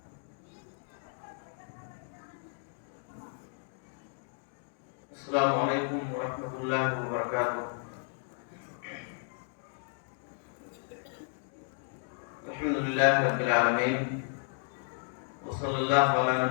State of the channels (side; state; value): right; silent; 56 dB below the other